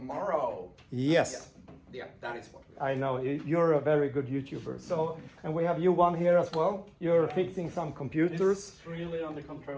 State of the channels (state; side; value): identical; both; correlation 1.00